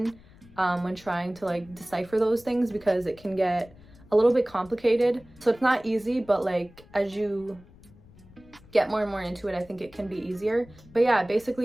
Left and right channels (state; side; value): noise; left; rumble, 24 dB below the sound